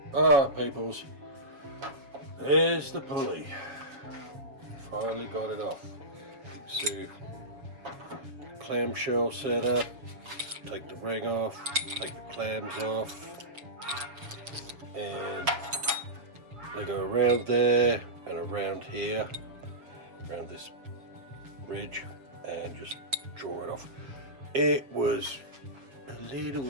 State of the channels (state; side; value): late; left; 7.1 ms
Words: Alright, peoples. There's the pulley. Finally got it off. You can see clamshell set up. Take the ring off, take the clams off, and they go around there and around here, around this ridge, and just draw it off. It was a